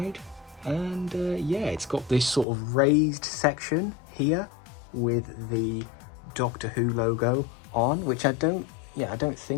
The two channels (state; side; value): drops out; right; at 2.5 s